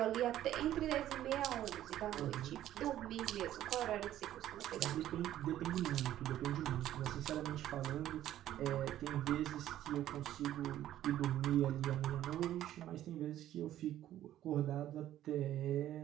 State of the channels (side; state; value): left; quieter; 12.6 dB